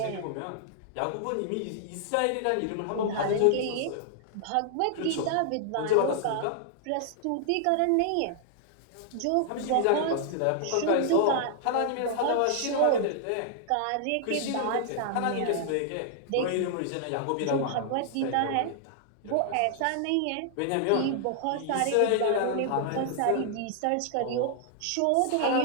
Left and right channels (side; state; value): both; different; correlation -0.01